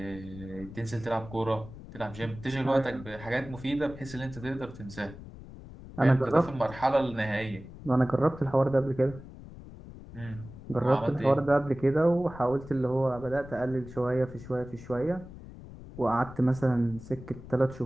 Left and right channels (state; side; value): noise; left; rumble, 15 dB below the sound